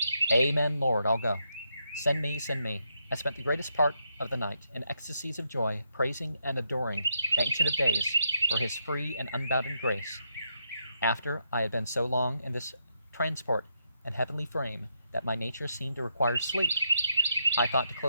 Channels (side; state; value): both; inverted; correlation -0.80